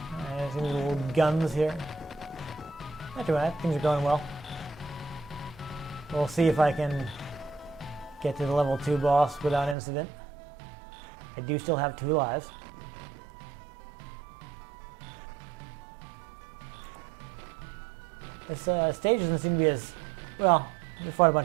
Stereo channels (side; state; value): left; drops out; at 9.8 s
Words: Alright, see these little guns here. Not too bad. Things are going well. We'll see if I can get to the level 2 boss without incident. I do still have 2 lives. This stage doesn't seem to be as... Well, we fought a